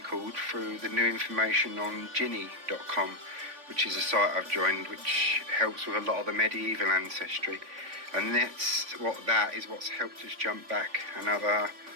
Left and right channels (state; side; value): late; left; 3.5 ms